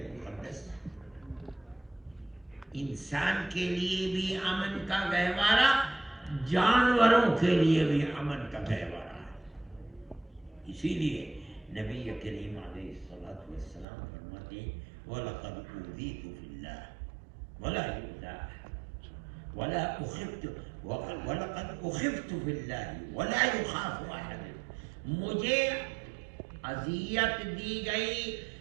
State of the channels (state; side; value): drops out; left; at 13.9 s